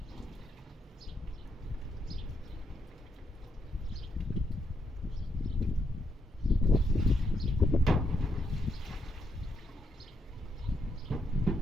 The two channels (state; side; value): normal; both; correlation 0.78